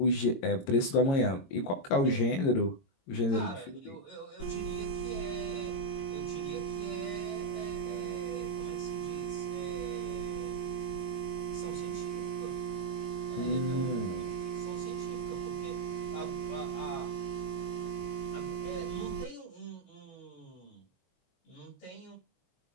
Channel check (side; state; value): right; late; 22 ms